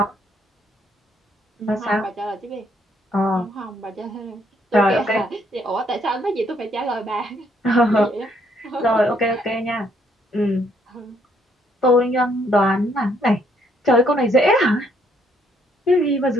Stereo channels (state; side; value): normal; both; correlation 0.69